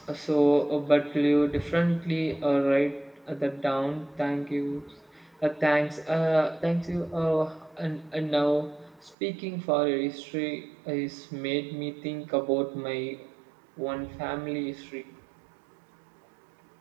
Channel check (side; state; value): left; drops out; at 9.2 s